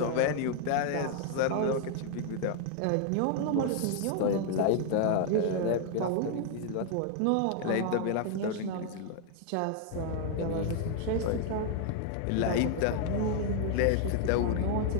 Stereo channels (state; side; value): different; both; correlation 0.00